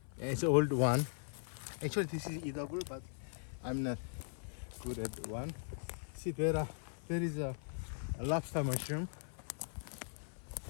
It's an old one. Actually, this is edible, but I'm not good at one. See, there is a lobster mushroom.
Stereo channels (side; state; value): right; silent; 51 dB below the other